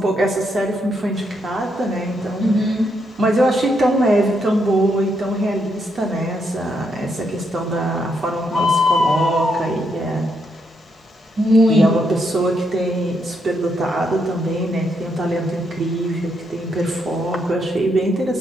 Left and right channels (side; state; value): both; normal; correlation 0.78